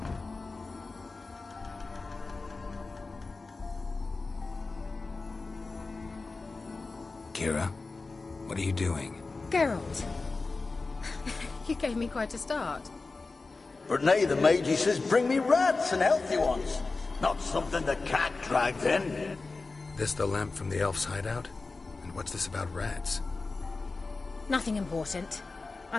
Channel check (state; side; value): quieter; right; 3.8 dB